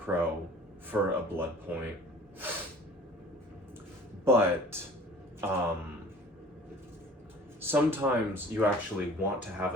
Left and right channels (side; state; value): both; normal; correlation 0.48